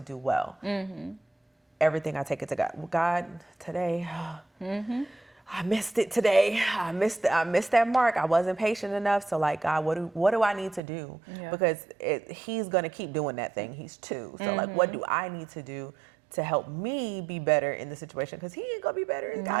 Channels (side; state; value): left; drops out; at 10.8 s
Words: do well. Everything I take it to God. God, today, I missed it today. I missed that mark. I wasn't patient enough. So like, God, what do I need to do? Yeah. Because he's gonna keep doing that thing. He's 2. So like, what do I need to do to help me be better in the situation? Because he ain't gonna be better.